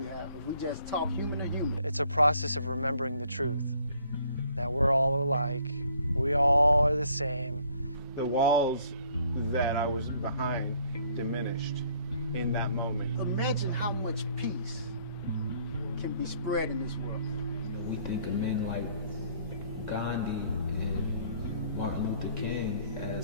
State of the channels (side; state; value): both; inverted; correlation -0.62